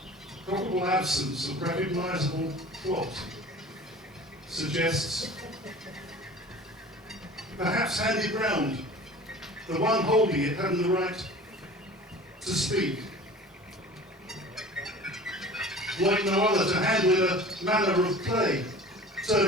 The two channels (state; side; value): normal; both; correlation 0.41